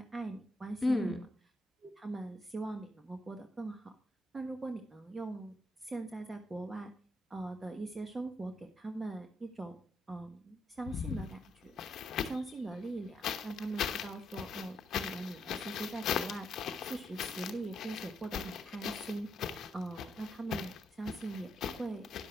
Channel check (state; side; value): normal; both; correlation 0.78